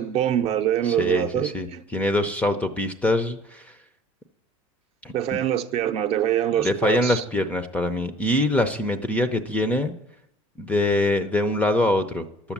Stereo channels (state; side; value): normal; both; correlation 0.52